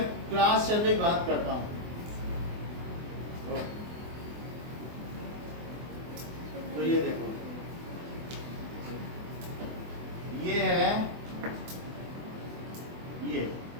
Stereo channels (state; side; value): late; left; 24 ms